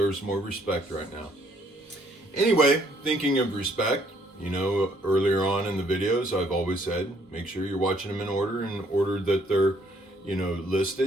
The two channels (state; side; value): normal; both; correlation 0.66